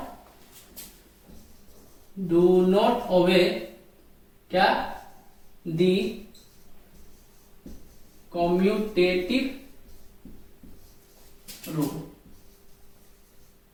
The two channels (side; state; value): both; identical; correlation 1.00